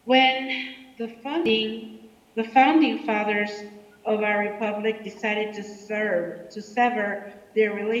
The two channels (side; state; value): both; identical; correlation 1.00